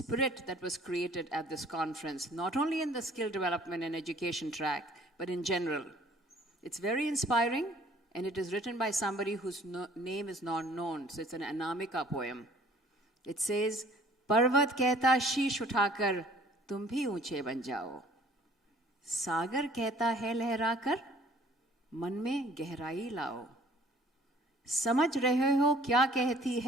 that was created at this conference, not only in the skill development and education track, but in general. It's very inspiring, and it is written by somebody whose name is not known, so it's an Anamika poem. It says, Parvat kehta sheesh uthakar, tum bhi unche ban jao. Sagar kehta hai lehrakar, man mein gehrai lao. समझ रहे हो क्या कहती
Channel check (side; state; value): both; normal; correlation 0.55